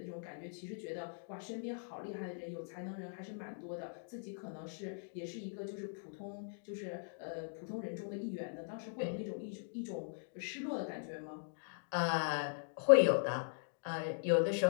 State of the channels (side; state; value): right; silent; digital silence